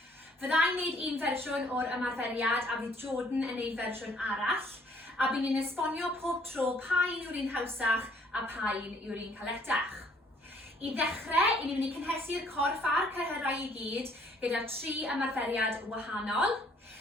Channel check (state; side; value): normal; both; correlation 0.62